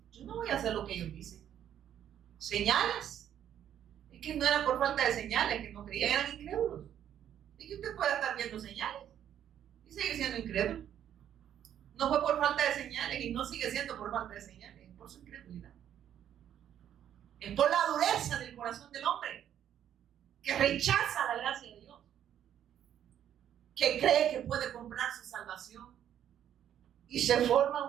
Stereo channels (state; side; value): quieter; left; 10.2 dB